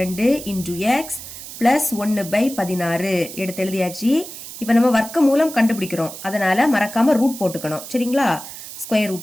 into X plus 1/16 எடுத்து எழுதியாச்சு. இப்போ நம்ம வர்க்க மூலம் கண்டுபிடிக்கிறோம், அதனால மறக்காம ரூட் போட்டுக்கணும். சரிங்களா? Square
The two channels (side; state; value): right; noise; hiss, 12 dB below the sound